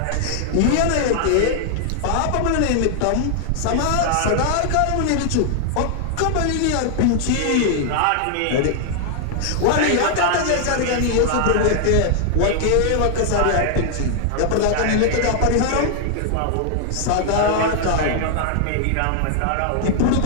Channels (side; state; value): both; different; correlation 0.00